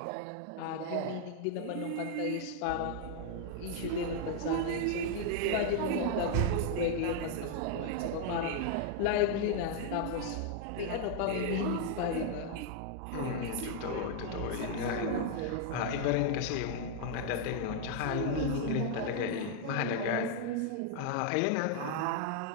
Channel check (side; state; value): both; different; correlation 0.00